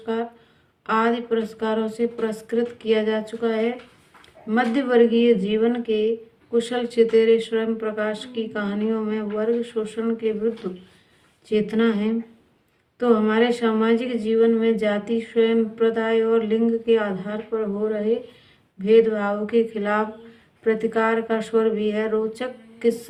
आदि पुरस्कारों से पुरस्कृत किया जा चुका है। मध्य वर्गीय जीवन के कुशल चितेरे स्वयं प्रकाश की कहानियों में वर्ग शोषण के विरुद्ध चेतना है, तो हमारे सामाजिक जीवन में जाति, स्वयं प्रदाय और लिंग के आधार पर हो रहे भेदभाव के खिलाफ प्रतिकार का स्वर भी है। रोचक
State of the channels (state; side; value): identical; both; correlation 1.00